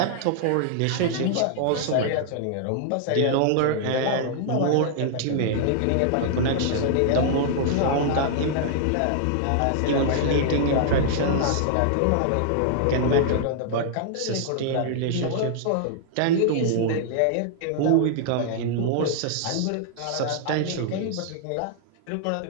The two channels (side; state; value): both; different; correlation -0.01